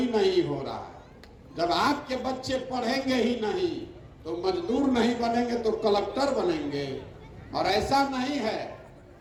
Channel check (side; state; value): both; identical; correlation 1.00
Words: नहीं हो रहा है। जब आपके बच्चे पढ़ेंगे ही नहीं तो मजदूर नहीं बनेंगे तो कलेक्टर बनेंगे। और ऐसा नहीं है